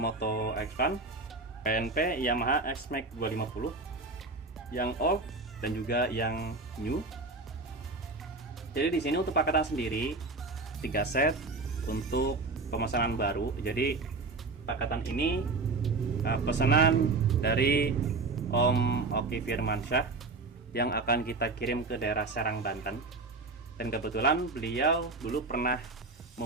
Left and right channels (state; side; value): quieter; left; 3.6 dB